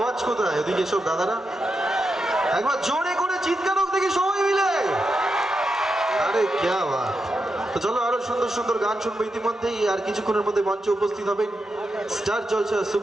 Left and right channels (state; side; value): normal; both; correlation 0.86